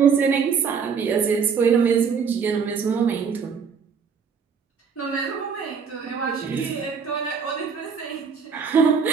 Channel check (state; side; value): quieter; left; 6.1 dB